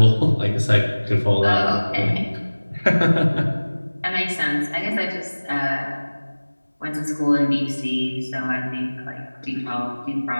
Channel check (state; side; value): inverted; both; correlation -1.00